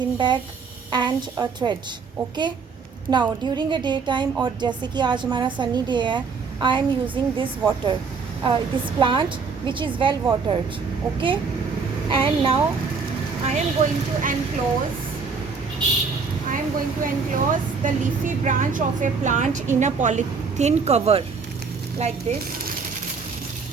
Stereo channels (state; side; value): quieter; left; 5.1 dB